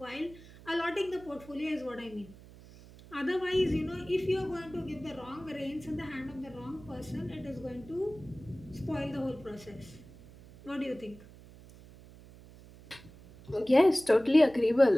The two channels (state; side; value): noise; right; hum, 20 dB below the sound